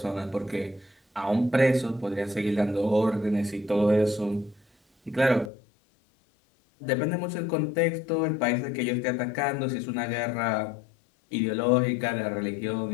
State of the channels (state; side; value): drops out; right; at 5.5 s